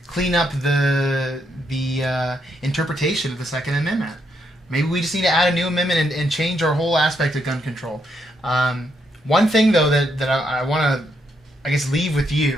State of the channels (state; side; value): normal; both; correlation 0.77